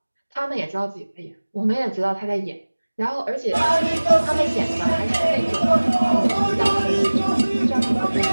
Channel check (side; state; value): both; inverted; correlation -1.00